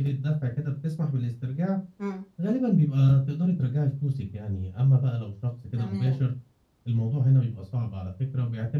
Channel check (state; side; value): identical; both; correlation 1.00